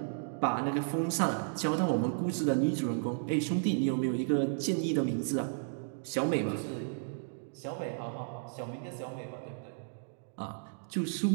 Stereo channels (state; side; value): silent; left; digital silence